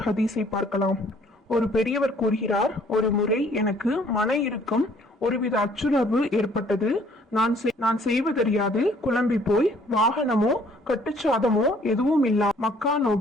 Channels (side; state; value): both; normal; correlation 0.60